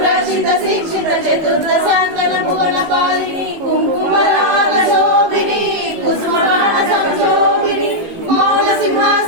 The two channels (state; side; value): late; left; 19 ms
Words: शिक्षित चतुर्दशांतन भुवन पालिनी कुंकुमराग शोभिनी कुसुमगान संशोभिनी मौन